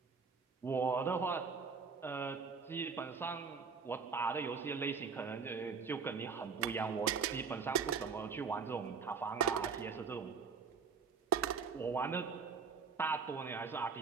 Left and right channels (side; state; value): left; quieter; 5.5 dB